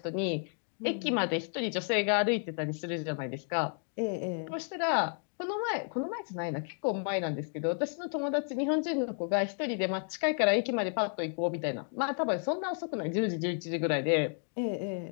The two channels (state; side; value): silent; right; 56 dB below the other